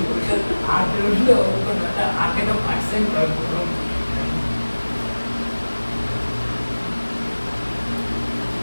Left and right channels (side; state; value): both; inverted; correlation -1.00